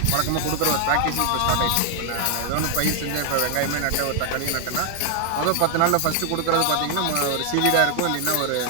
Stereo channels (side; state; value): both; different; correlation 0.00